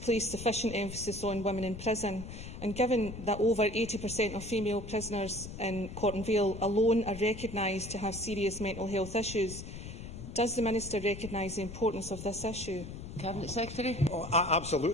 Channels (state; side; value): noise; left; rumble, 10 dB below the sound